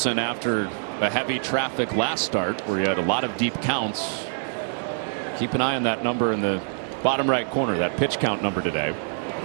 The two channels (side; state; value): left; silent; digital silence